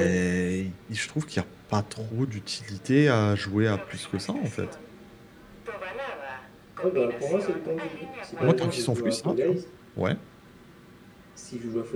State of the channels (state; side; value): identical; both; correlation 1.00